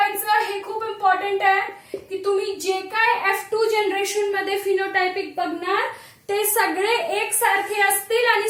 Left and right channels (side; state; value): both; identical; correlation 1.00